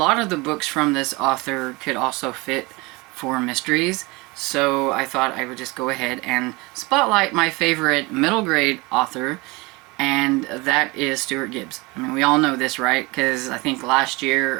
of the books from this author could also fit for mysteries, so I thought I would just go ahead and spotlight my favorite middle grade author, and that is Stuart Gibbs. I mean, we all know this, right? Because I think last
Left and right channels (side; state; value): left; quieter; 24.8 dB